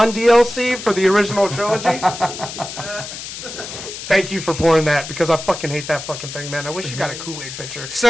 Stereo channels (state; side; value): noise; left; hiss, 9 dB below the sound